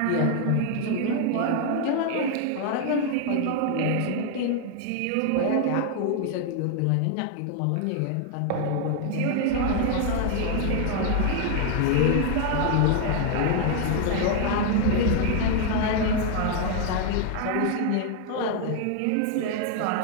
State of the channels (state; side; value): different; both; correlation 0.00